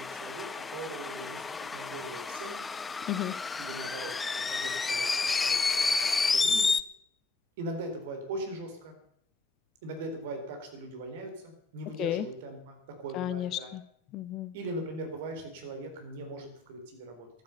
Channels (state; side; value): quieter; right; 3.6 dB